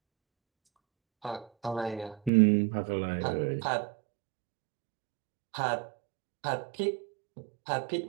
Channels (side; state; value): left; drops out; at 2.3 s